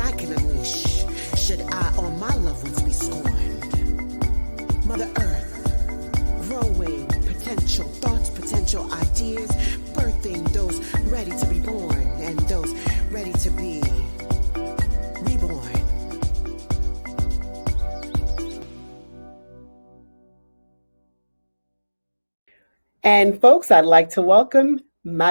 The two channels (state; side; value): inverted; both; correlation -1.00